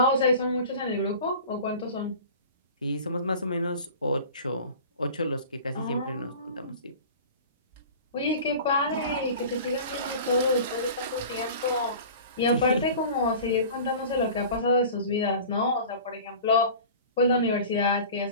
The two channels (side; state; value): both; inverted; correlation -0.39